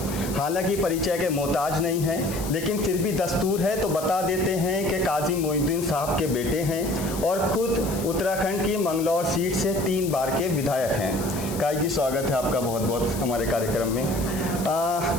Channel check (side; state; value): left; noise; hiss, 11 dB below the sound